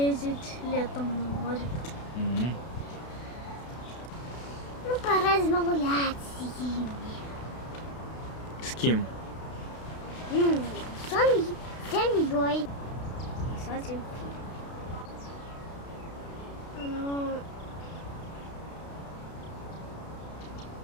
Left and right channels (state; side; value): late; right; 32 ms